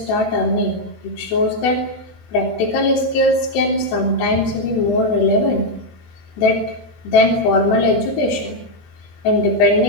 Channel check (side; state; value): right; late; 14 ms